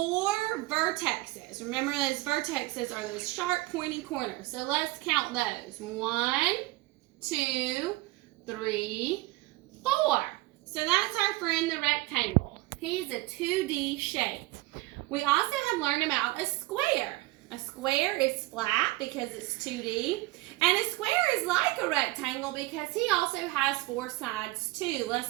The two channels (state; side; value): quieter; left; 20.4 dB